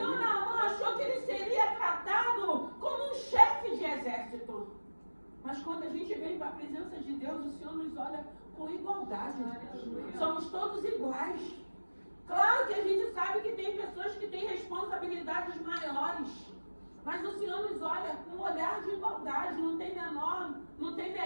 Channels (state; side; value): inverted; both; correlation -1.00